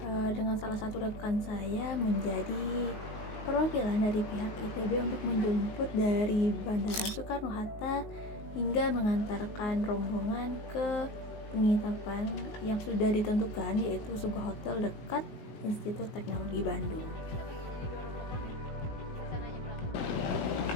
dengan salah satu rekan saya menjadi perwakilan dari pihak ITB untuk menjemput dari Bandara Soekarno-Hatta hingga mengantarkan rombongan ke penginapan yang sudah ditentukan, yaitu sebuah hotel dekat Institut Teknologi Bandung.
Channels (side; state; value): right; late; 19 ms